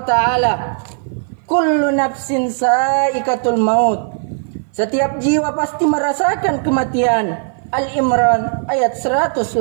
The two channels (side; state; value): left; silent; 56 dB below the other